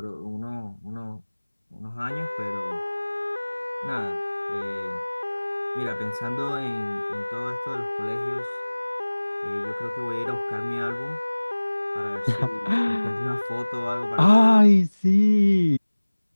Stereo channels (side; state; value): both; inverted; correlation -1.00